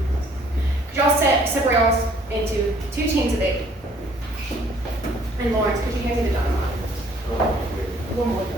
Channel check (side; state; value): both; normal; correlation 0.59